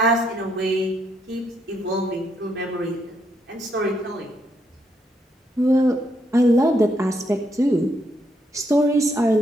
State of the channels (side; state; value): both; normal; correlation 0.76